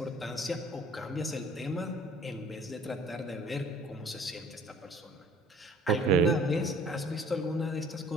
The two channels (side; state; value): both; normal; correlation 0.52